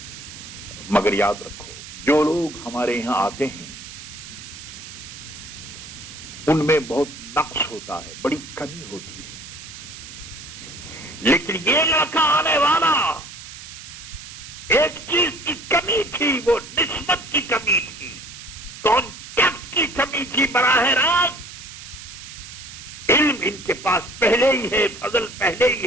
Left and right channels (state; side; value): noise; right; hiss, 14 dB below the sound